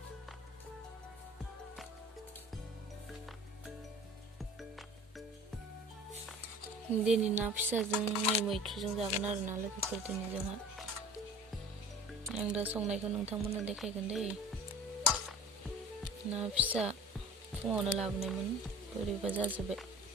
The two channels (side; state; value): both; normal; correlation 0.43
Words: दिनै ना फिसाजों मैथ्रुजों जागोन आरो ना लोगोफोर। दिनै जोंहा आं दा संनायखौ नोंथांमोननो देखायगोन दै। ना फिसा फुङावनो लाबोनायमोन, बोरैबा जाजोब्बाय।